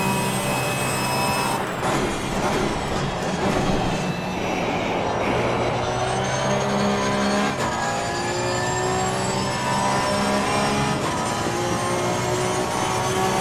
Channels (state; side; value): identical; both; correlation 1.00